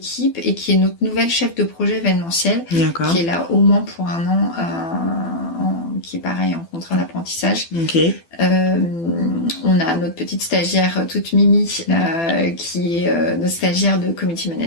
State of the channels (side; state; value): right; late; 12 ms